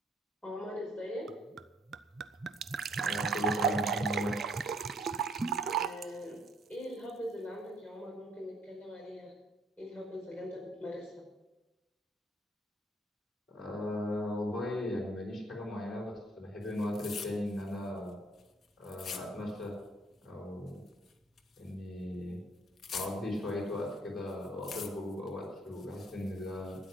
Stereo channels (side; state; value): both; normal; correlation 0.63